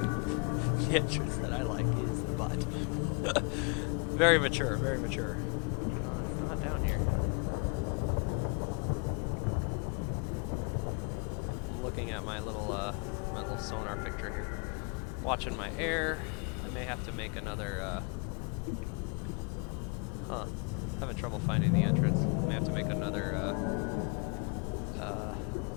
The entrance that I like is the butt. Very mature, very mature. It's not down here. I'm looking at my little sonar picture here. Watching my air. I may have to make another, having trouble finding the entrance. May have to make another,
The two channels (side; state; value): right; quieter; 33.3 dB